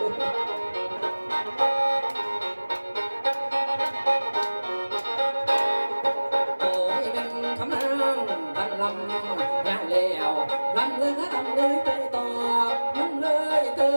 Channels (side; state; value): both; inverted; correlation -1.00